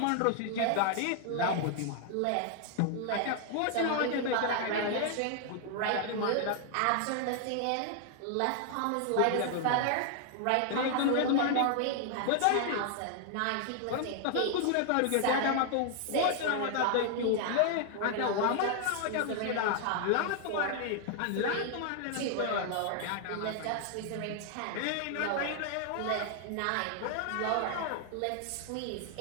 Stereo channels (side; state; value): both; different; correlation 0.00